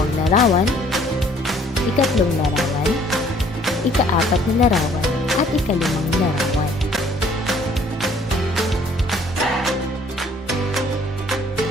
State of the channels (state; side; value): normal; both; correlation 0.59